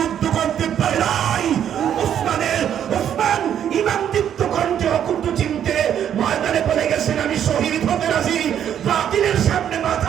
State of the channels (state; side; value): quieter; left; 9.6 dB